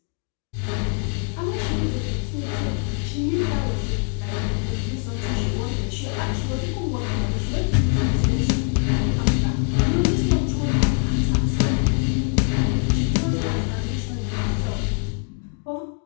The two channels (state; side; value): quieter; right; 39.4 dB